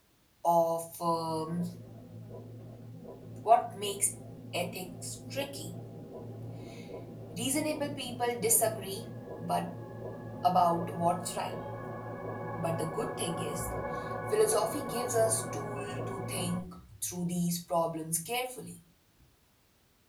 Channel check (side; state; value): both; identical; correlation 1.00